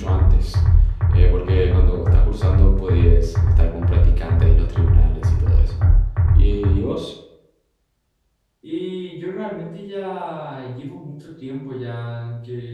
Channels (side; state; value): both; identical; correlation 1.00